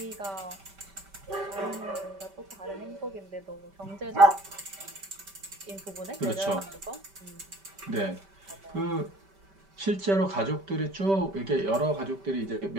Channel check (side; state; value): left; late; 5.1 ms